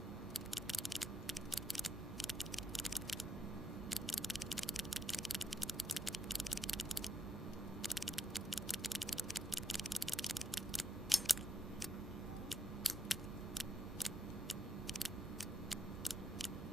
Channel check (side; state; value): both; normal; correlation 0.80